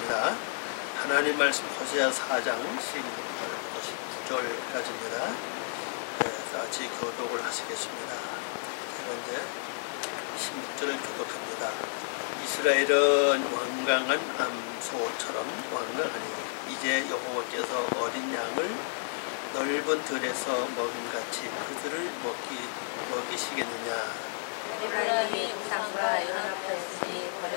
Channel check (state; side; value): silent; right; 57 dB below the other